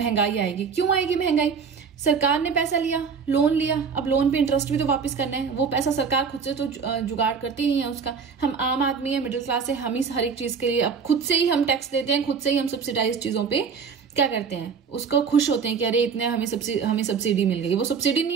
आएगी। क्यों आएगी महंगाई? सरकार ने पैसा लिया, लोन लिया, अब लोन पे इंटरेस्ट भी तो वापस करना है। वो पैसा सरकार खुद से तो जुगाड़ करती नहीं है उसका। हम आम आदमी है, मिडिल क्लास है, हम ही हर एक चीज के लिए अब खुद से ही हम टैक्स देते हैं, खुद से ही हम सब्सिडाइज चीजों पे क्या करते हैं, उसको खुश होते हैं कि अरे इतने हमें सब्सिडी मिल गई। वो सब्सिडी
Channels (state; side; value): quieter; left; 6.0 dB